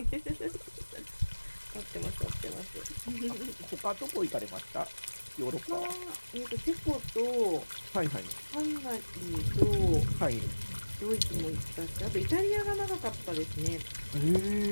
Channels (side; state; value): both; inverted; correlation -1.00